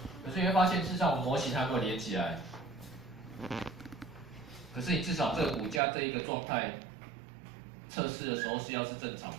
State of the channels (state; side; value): drops out; left; at 5.8 s